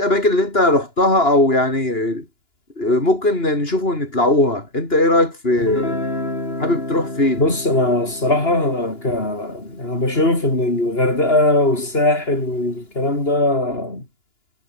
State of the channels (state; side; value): late; right; 2.9 ms